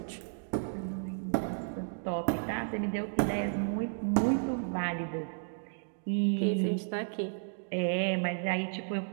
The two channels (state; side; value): silent; left; digital silence